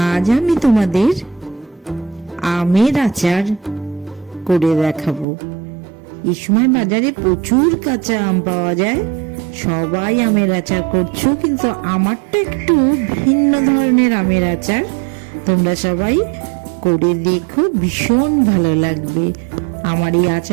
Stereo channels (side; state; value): left; drops out; at 5.2 s